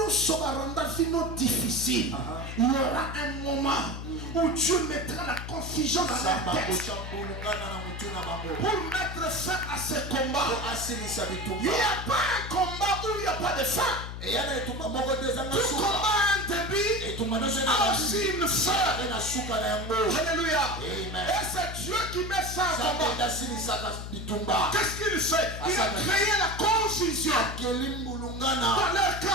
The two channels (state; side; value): noise; left; hum, 8 dB below the sound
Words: baranda vino difficile. Il y aura un moment où Dieu mettra la confusion dans samba la tête kochambulungana na mutu na bango pour mettre fin à ce combat. po asilisa Il bitumba n'y a pas un combat où il n'y a pas de fin. eya na etumba moko te ezanga Tout suka combat a un début, etumba nyonso a aussi une fin. ene na suka na yango Alléluia. Amen. Et c'est Dieu qui met ça en nzambe combat. nde asilisaka bitumba Qu'est-ce qu'il fait? Il a créé la confusion akeli mbulungana dans leur